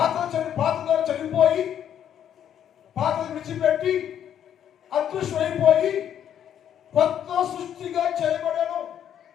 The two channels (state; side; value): quieter; right; 9.7 dB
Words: చనిపోయి పాత విడిచిపెట్టి అదృశ్యమైపోయి కొత్త సృష్టిగా చేయబడను.